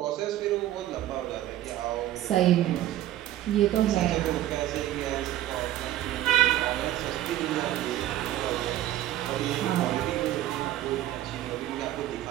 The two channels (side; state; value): left; quieter; 13.6 dB